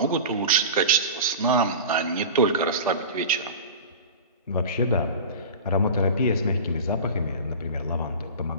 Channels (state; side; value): inverted; both; correlation -0.32